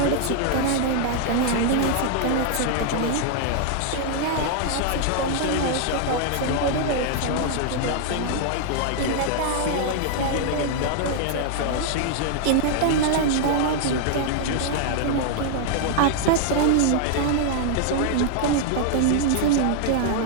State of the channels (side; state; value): both; different; correlation 0.00